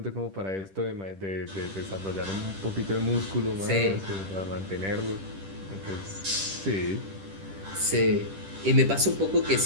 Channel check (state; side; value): late; left; 10 ms